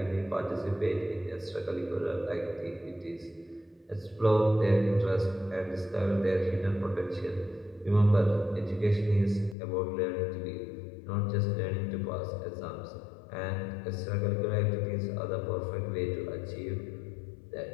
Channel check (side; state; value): right; drops out; at 9.6 s